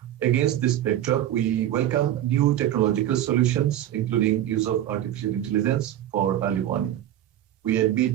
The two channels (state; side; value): quieter; left; 12.1 dB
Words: Against this backdrop, we welcome new technological solutions, including use of artificial intelligence for early warning. We